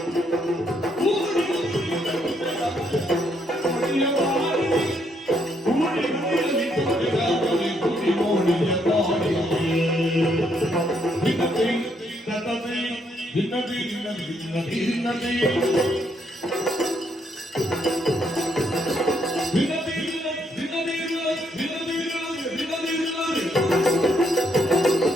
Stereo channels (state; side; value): normal; both; correlation 0.73